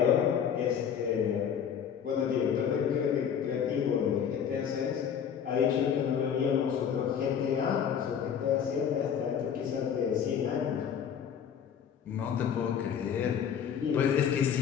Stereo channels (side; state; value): right; quieter; 8.1 dB